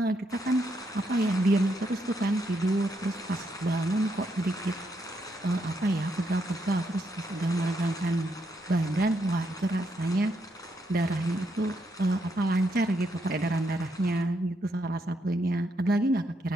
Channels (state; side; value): normal; both; correlation 0.78